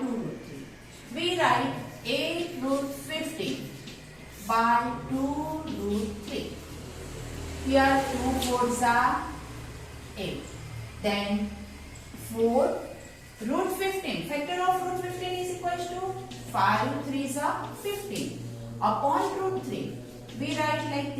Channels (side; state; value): both; identical; correlation 1.00